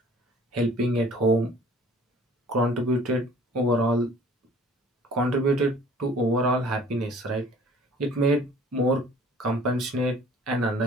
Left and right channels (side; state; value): both; normal; correlation 0.52